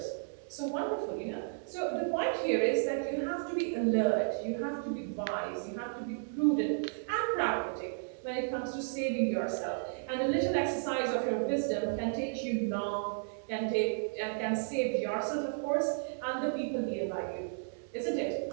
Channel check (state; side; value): silent; left; digital silence